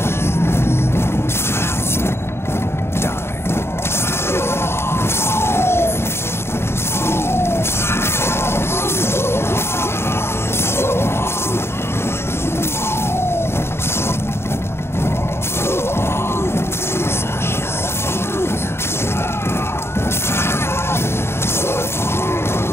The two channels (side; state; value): right; late; 0.12 ms